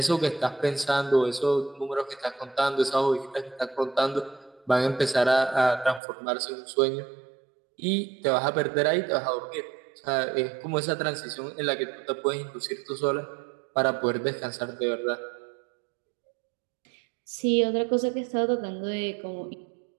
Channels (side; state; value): left; drops out; at 6.0 s